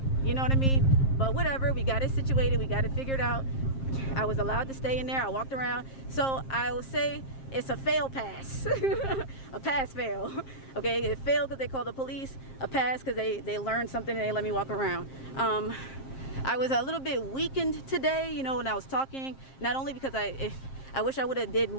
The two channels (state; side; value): late; right; 7.5 ms